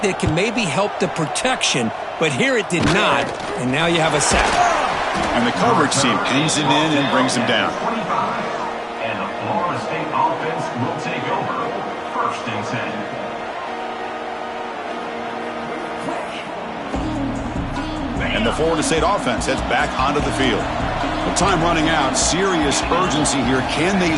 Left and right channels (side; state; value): both; identical; correlation 1.00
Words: that it can maybe help the protection, but here it did not, and now you have a sack. And the coverage team pins him in and brings him down. And the Florida State offense will take over. First and 10. And the Florida State offense heads back onto the field. With time running out, serious urgency here. Can they